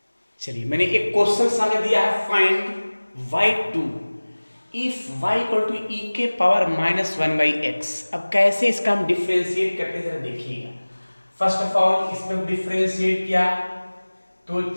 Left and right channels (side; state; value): both; inverted; correlation -1.00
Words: चलिए, मैंने एक क्वेश्चन सामने दिया है, find y2 if y equal to e के पावर -1/x। अब कैसे इसका हम डिफ्रेंशिएट करते जरा देखिएगा। फर्स्ट ऑफ ऑल इसमें डिफ्रेंशिएट किया तो